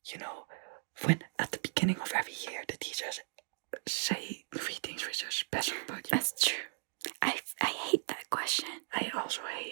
when at the beginning of every year the teachers say 3 things which are special about you. That's true. I hate that question. I also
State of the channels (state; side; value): silent; left; digital silence